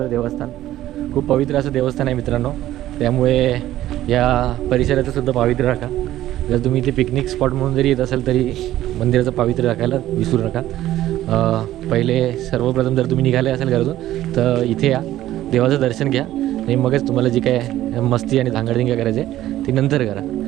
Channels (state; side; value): quieter; left; 14.0 dB